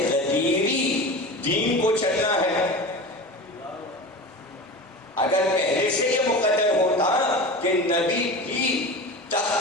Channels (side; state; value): both; normal; correlation 0.31